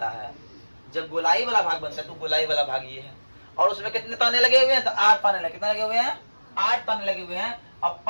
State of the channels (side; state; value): both; inverted; correlation -1.00